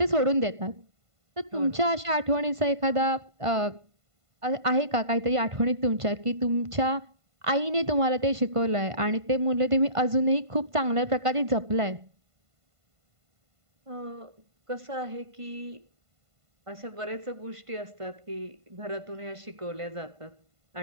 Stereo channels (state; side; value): late; left; 1.5 ms